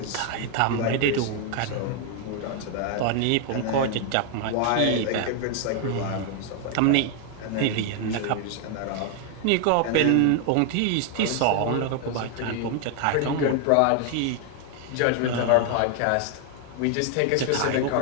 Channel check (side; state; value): both; different; correlation 0.00